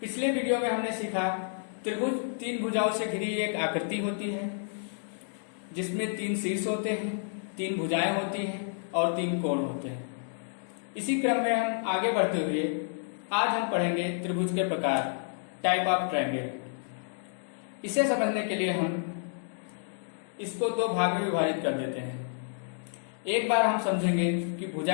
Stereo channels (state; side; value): silent; right; digital silence